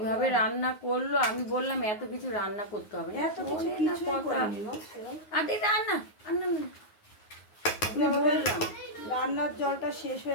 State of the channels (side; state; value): right; late; 9.5 ms